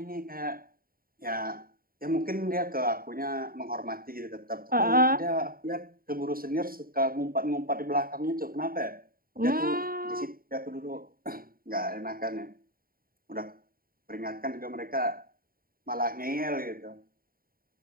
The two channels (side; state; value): left; late; 0.43 ms